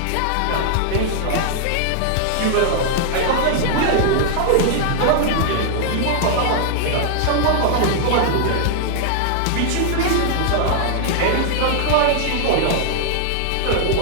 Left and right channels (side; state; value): both; different; correlation -0.01